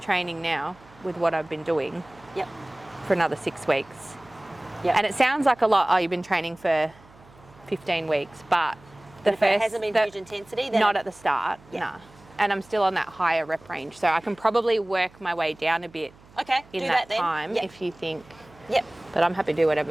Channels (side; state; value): right; noise; hum, 26 dB below the sound